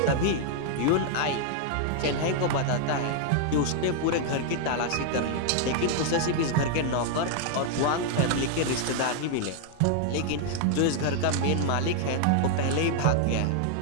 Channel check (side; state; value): both; different; correlation 0.00